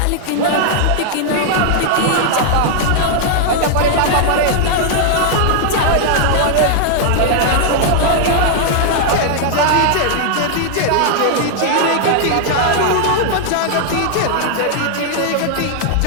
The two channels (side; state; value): both; different; correlation -0.01